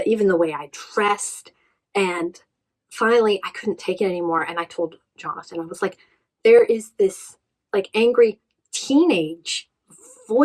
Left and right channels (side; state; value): both; identical; correlation 1.00